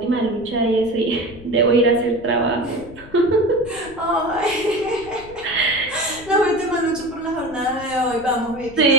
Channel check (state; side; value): noise; left; rumble, 20 dB below the sound